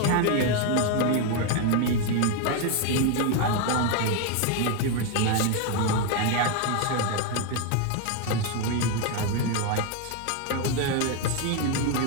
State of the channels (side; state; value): both; different; correlation 0.01